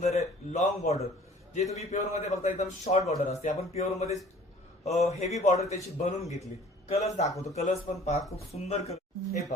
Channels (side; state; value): both; normal; correlation 0.51